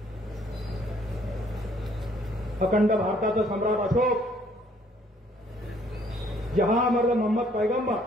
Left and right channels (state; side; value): normal; both; correlation 0.63